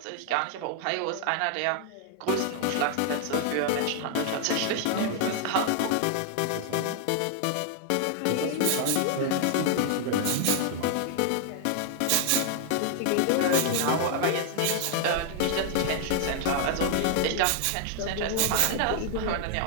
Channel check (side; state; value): both; different; correlation 0.00